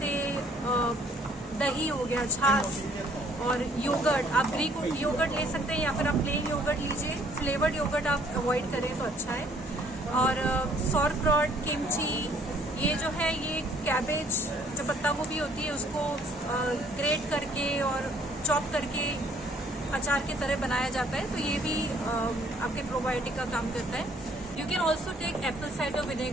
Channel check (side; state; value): both; normal; correlation 0.61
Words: दही हो गया, छाछ और योगर्ट। आप ग्रीक योगर्ट ले सकते हैं या फिर आप प्लेन योगर्ट लीजिए। फ्लेवर्ड योगर्ट आप अवॉइड करें तो अच्छा है। और सॉरक्रॉट, किमची, ये जो है ये कैबेज, जो पत्ता गोभी होती है उसको ग्रेट करके और चॉप करके अचार की तरह बनाया जाता है, तो ये भी आपके प्रोबायोटिक का काम करता है। You can also take apple cider